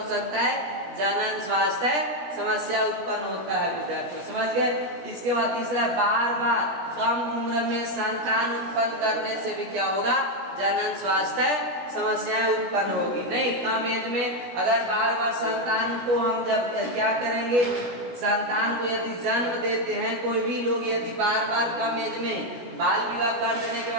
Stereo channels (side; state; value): left; late; 17 ms